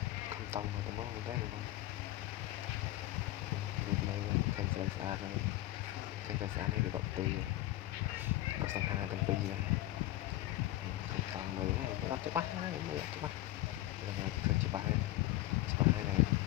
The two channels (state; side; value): quieter; right; 16.1 dB